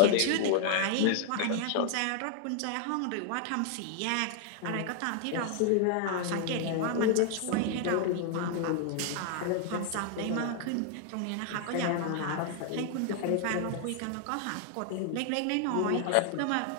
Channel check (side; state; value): both; different; correlation 0.00